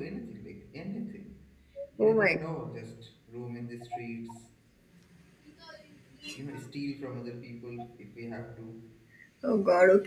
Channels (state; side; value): identical; both; correlation 1.00